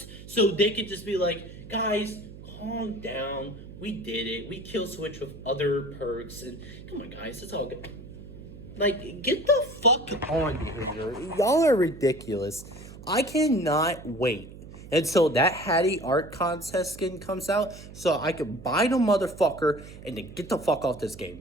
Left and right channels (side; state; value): right; noise; hum, 15 dB below the sound